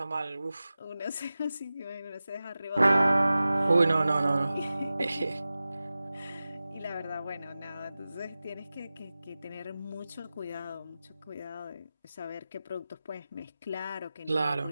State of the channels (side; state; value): both; inverted; correlation -0.96